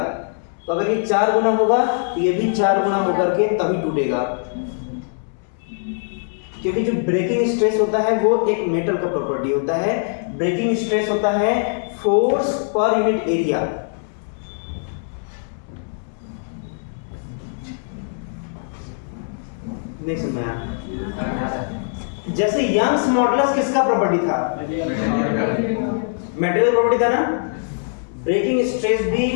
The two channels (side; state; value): right; silent; 65 dB below the other